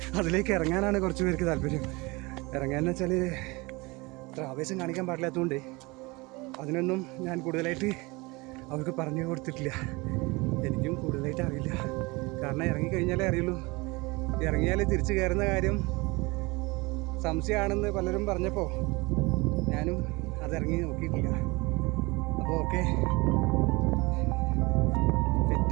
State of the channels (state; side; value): quieter; left; 24.6 dB